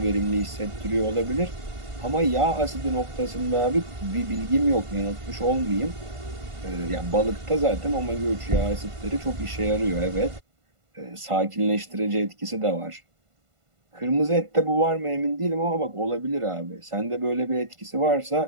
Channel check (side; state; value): left; late; 1.5 ms